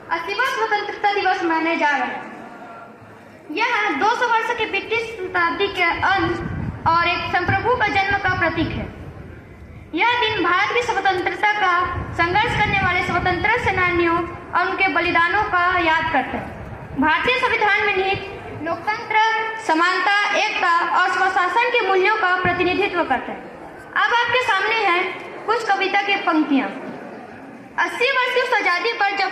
80वां स्वतंत्रता दिवस मनाने जा रहा है। यह 200 वर्ष के ब्रिटिश शताब्दी के अंत और एक संप्रभु का जन्म का प्रतीक है। यह दिन भारत की स्वतंत्रता का संघर्ष करने वाले स्वतंत्रता सेनानियों और उनके बलिदानों का याद करता है। भारतीय संविधान में निहित लोकतंत्र, समानता, एकता और स्वशासन के मूल्यों का प्रतिनिधित्व करता है। अब आपके सामने है कुछ कविता की पंक्तियां। 80 वर्ष की उस आजादी पर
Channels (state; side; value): identical; both; correlation 1.00